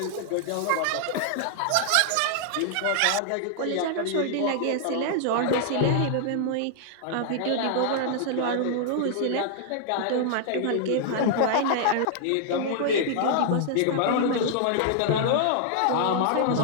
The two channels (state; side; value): different; both; correlation -0.01